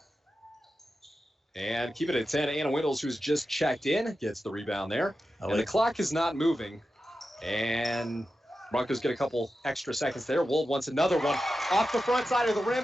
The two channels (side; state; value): both; normal; correlation 0.91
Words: And keep it at 10. Anna Windles, who's just checked in, gets the rebound there. And the clock is not moving. And Broncos get a couple extra seconds there. Wold wants another one off the front side of the rim